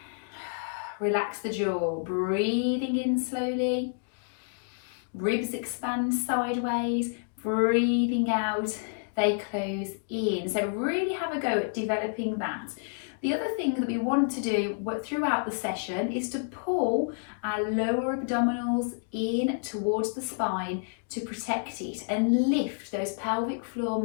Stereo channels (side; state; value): right; silent; digital silence